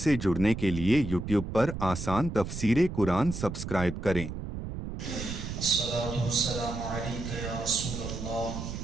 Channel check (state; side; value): noise; right; rumble, 6 dB below the sound